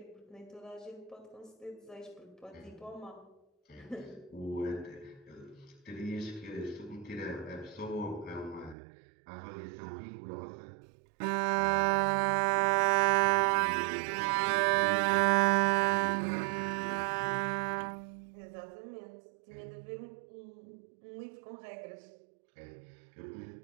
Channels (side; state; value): left; drops out; at 8.8 s